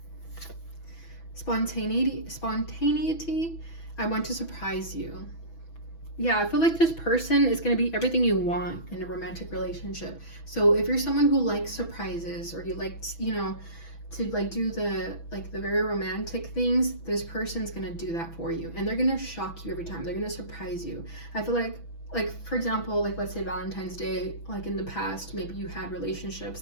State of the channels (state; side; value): late; right; 6.1 ms